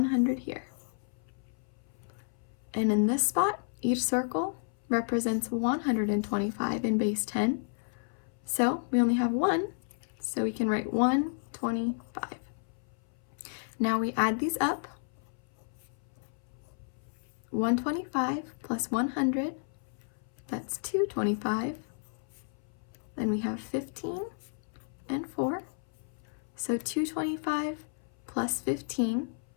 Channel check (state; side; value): silent; right; 56 dB below the other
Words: here. And in this spot, each circle represents 125 in base 10. So we only have 1, so we can write 125. Now we add these up. 125 plus 100, that's 225. Then we have 15 and 4. So 225 plus 15,